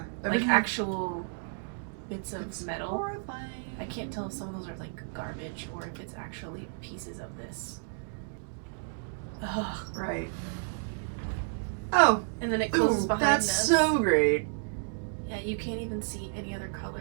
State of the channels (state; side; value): silent; left; digital silence